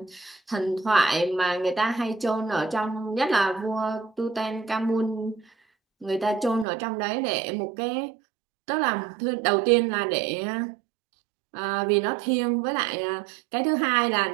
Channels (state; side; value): drops out; left; at 6.7 s